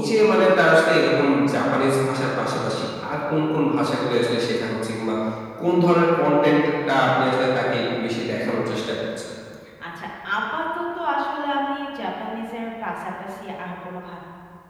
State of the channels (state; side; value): identical; both; correlation 1.00